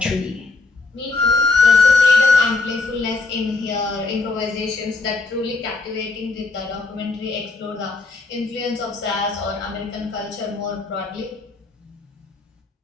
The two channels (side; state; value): right; quieter; 3.7 dB